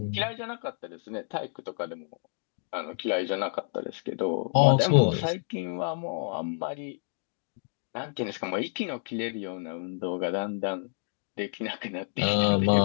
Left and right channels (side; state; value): right; silent; digital silence